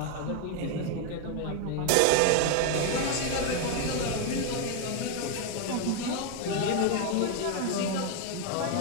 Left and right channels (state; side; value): different; both; correlation 0.01